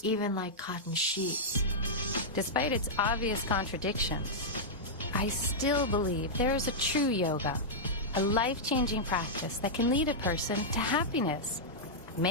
Even like cotton sheets. Despite its obvious contradictions, I still believe there is a true yoga, a life-changing practice that can lead a person to happiness,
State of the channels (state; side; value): normal; both; correlation -0.08